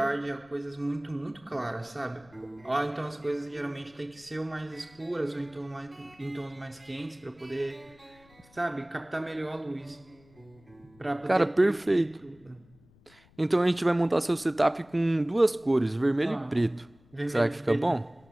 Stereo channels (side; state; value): left; noise; rumble, 28 dB below the sound